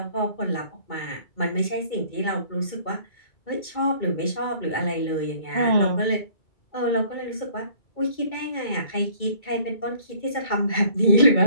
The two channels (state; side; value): late; right; 2.2 ms